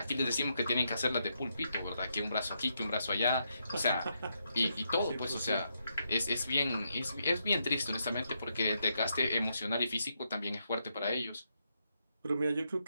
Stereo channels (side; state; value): both; inverted; correlation -0.80